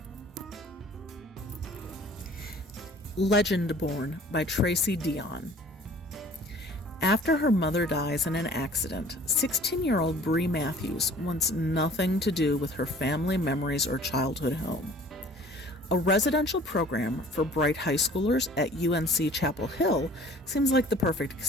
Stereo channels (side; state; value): both; normal; correlation 0.50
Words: Legendborn by Tracy Deonn. After her mother dies in an accident, 16-year-old Bree Matthews wants nothing to do with her family memories or childhood home. A residential program for bright high schoolers at UNC Chapel Hill seems like the perfect